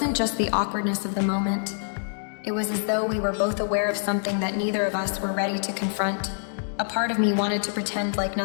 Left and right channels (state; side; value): silent; right; digital silence